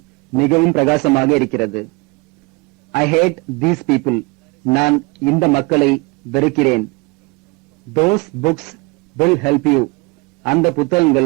மிகவும் பிரகாசமாக இருக்கிறது. I hate these people. நான் இந்த மக்களை வெறுக்கிறேன். Those books will help you. அந்த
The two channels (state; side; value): quieter; left; 26.6 dB